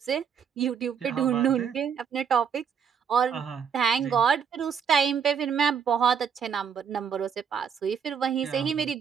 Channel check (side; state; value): left; quieter; 7.1 dB